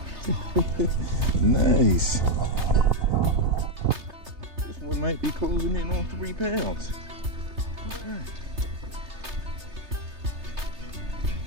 Nice. This one might be closing in on 3 pounds. All right.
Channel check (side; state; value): left; late; 3.3 ms